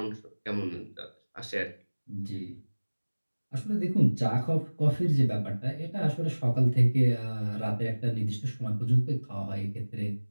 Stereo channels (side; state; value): both; inverted; correlation -1.00